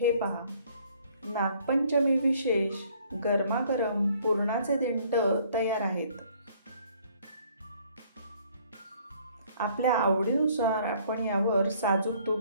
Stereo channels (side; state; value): both; inverted; correlation -0.60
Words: पहा, नागपंचमी विशेष गरमागरम पुरणाचे दिंड तयार आहेत। आपल्या आवडीनुसार आपण यावर साजूक